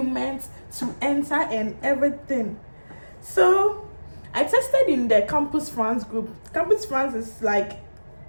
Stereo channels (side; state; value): both; inverted; correlation -1.00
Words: to enter and everything. So I tested in the Campus France group. Campus France is like